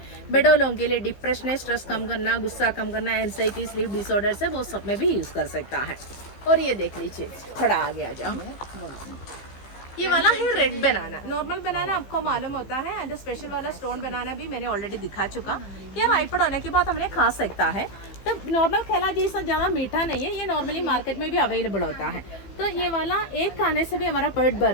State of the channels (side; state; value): right; late; 15 ms